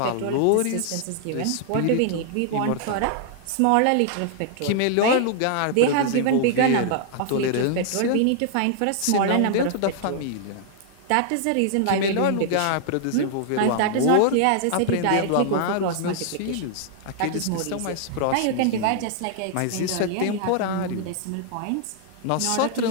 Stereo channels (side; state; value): both; different; correlation -0.01